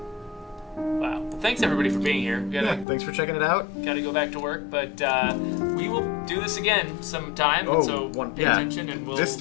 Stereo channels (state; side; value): drops out; right; at 2.9 s